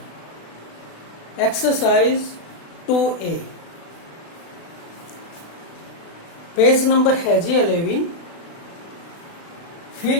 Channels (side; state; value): right; late; 35 ms